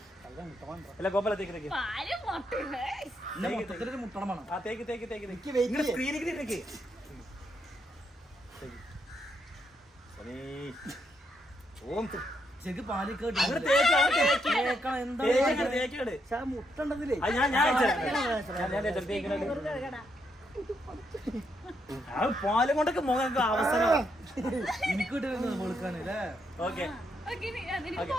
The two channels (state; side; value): normal; both; correlation 0.78